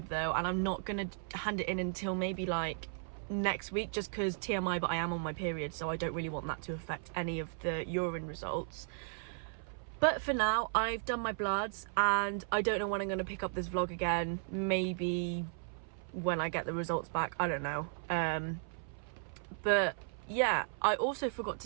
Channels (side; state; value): left; silent; 54 dB below the other